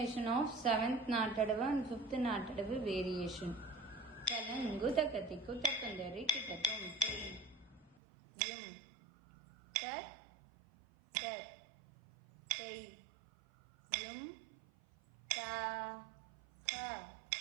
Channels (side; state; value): left; drops out; at 8.0 s